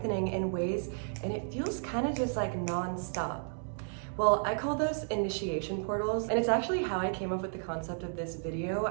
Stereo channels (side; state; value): left; silent; digital silence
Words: in ways, and it feels kind of just like non-stop? Well, I call those initiation portals, and it's actually how I came up with the concept of this video.